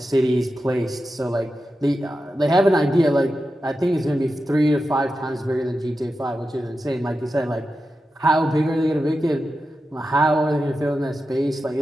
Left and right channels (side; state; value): both; normal; correlation 0.91